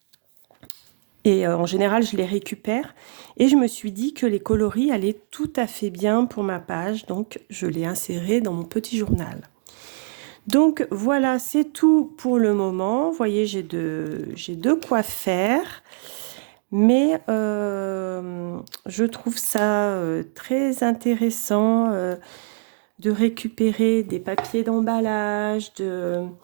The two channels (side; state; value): left; silent; digital silence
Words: Et en général, je les récupère. Et je me suis dit que les coloris allaient tout à fait bien pour ma page. Donc, je l'ai inséré dans mon petit journal. Donc, voilà, c'est tout pour le moment. Vous voyez, j'ai de quoi faire. Mais je trouve ça très intéressant de récupérer des papiers d'emballage,